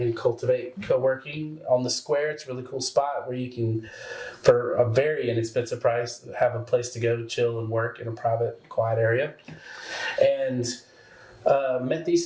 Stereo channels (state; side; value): identical; both; correlation 1.00